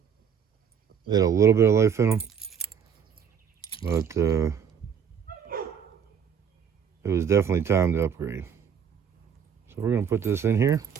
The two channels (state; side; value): quieter; left; 7.4 dB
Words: They had a little bit of life in them. But it was definitely time to upgrade. So we're going to put this in here.